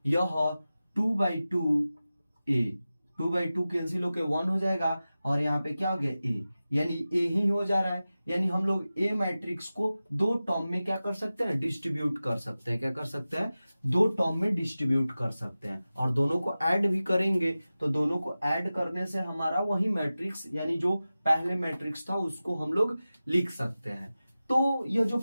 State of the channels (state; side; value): inverted; both; correlation -0.95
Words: यह 2/2a, 2/2 कैंसिल होकर 1 हो जाएगा, और यहाँ पे क्या हो गया a, यानी a ही हो जा रहा है। यानी हम लोग a मैट्रिक्स को दो टर्म में क्या कर सकते हैं, डिस्ट्रीब्यूट कर सकते हैं। क्या कर सकते हैं, दो टर्म में डिस्ट्रीब्यूट कर सकते हैं, और दोनों को ऐड भी करेंगे तो दोनों को ऐड करने से हमारा वही मैट्रिक्स यानी जो पहले मैट्रिक्स था उसको हम लोग लिख सकते हैं। तो यह जो